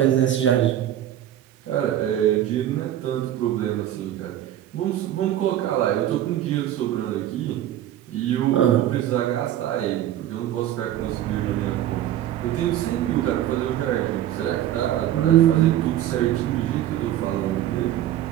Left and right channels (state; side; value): quieter; left; 12.1 dB